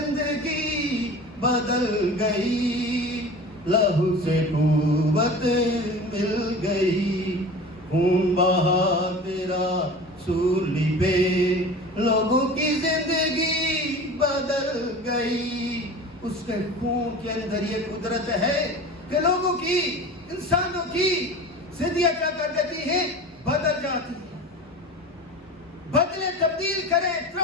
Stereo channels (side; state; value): both; normal; correlation 0.36